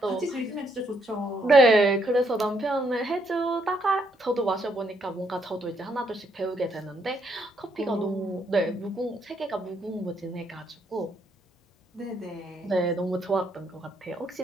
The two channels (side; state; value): both; normal; correlation 0.73